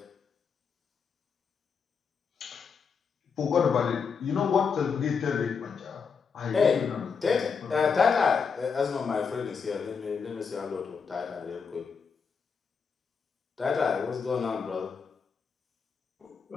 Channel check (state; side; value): quieter; right; 5.8 dB